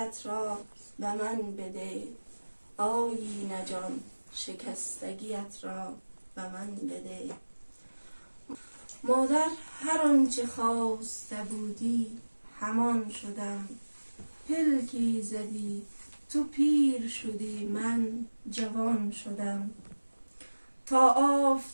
را به من بده. آیینه جان شکستگیت را به من بده. مادر هر آنچه خواسته بودی همان شدم. پلکی زدی تو پیر شدی من جوان شدم. تا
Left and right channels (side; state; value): both; inverted; correlation -1.00